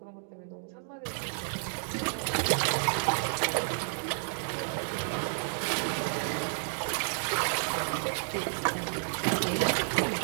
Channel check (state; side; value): silent; left; digital silence